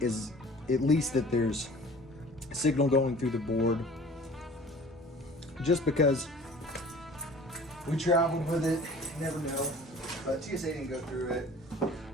is at least that there's signal going through the board. Just because we traveled with it, you never know. But TSA didn't go through it,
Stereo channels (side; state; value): both; normal; correlation 0.46